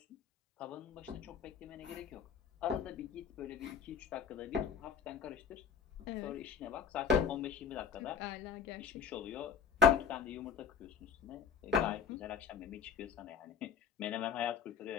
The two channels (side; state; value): right; quieter; 6.9 dB